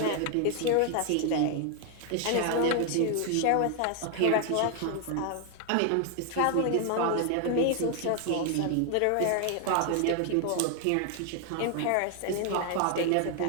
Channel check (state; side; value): different; both; correlation 0.00